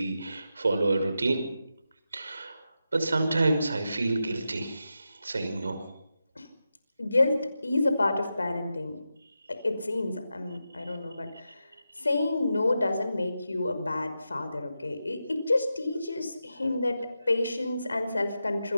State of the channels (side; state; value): both; inverted; correlation -0.89